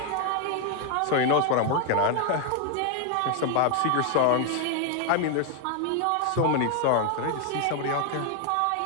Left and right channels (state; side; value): different; both; correlation 0.01